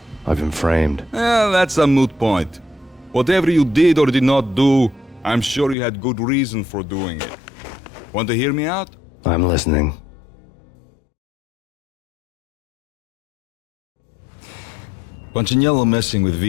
I've been framed. That's a moot point. Whatever you did or did not do, I'm sure you had good reason for doing it. Want to hear me out? I'm listening. Punchinello messing with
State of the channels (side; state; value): right; drops out; at 5.8 s